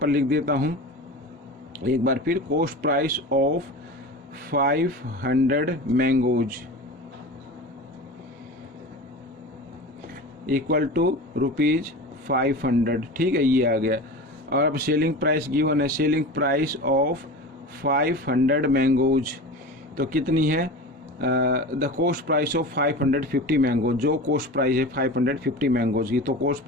लिख देता हूँ एक बार फिर, cost price of 500 mangoes equal to ₹500, ठीक है, ये आ गया। और अब सेलिंग प्राइस गिवन है, सेलिंग प्राइस ऑफ 500 मैंगोज तो कितनी है, the cost price of 550 mangoes, जो कॉस्ट प्राइस है 550 मैंगोज की, तो कॉस्ट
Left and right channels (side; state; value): both; normal; correlation 0.31